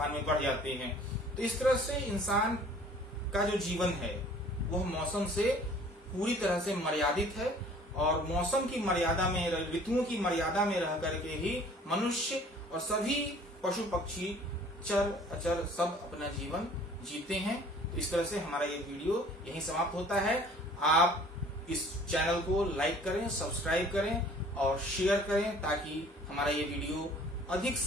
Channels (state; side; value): normal; both; correlation 0.52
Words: में बढ़ जाती हैं। तो इस तरह से इंसान का जो जीवन है वह मौसम से पूरी तरह से मर्यादित है और मौसम की मर्यादा में, ऋतुओं की मर्यादा में रह करके ही मनुष्य और सभी पशु पक्षी, चर अचर सब अपना जीवन जीते हैं। तो इस तरह से हमारा ये वीडियो यहीं समाप्त होता है। आप इस चैनल को लाइक करें, सब्सक्राइब करें और शेयर करें ताकि हमारा ये वीडियो अधिक